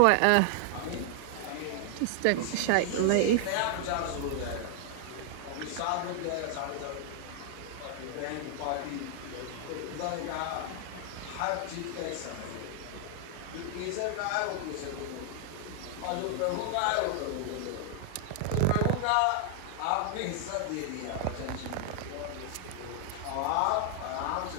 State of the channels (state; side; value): different; both; correlation 0.00